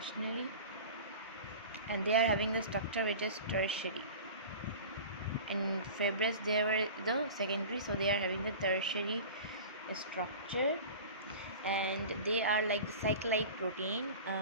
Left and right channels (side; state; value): both; inverted; correlation -0.36